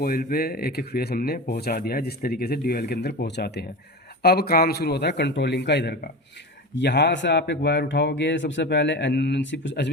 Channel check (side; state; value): both; normal; correlation 0.27